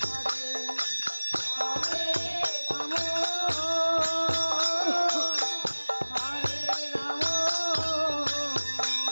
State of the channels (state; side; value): inverted; both; correlation -1.00